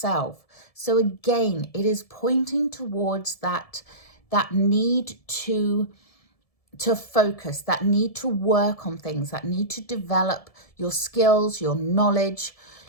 So again, it is pointing towards that need to focus, that need to work on things, that need to develop your skills, your knowledge,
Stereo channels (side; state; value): right; late; 1.7 ms